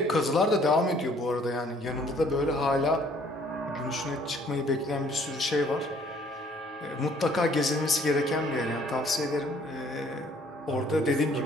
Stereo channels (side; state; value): both; normal; correlation 0.60